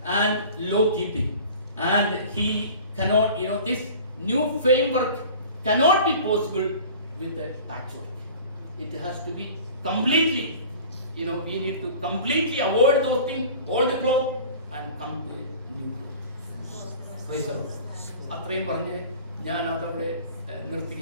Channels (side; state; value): both; inverted; correlation -0.42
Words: and law keeping, and he cannot, this new framework cannot be possible with a patchwork. It has to be completely, we need to completely avoid those things, old cloth, and come to a new cloth. Praise the Lord. അത്രയും പറഞ്ഞ് ഞാൻ അതവിടെ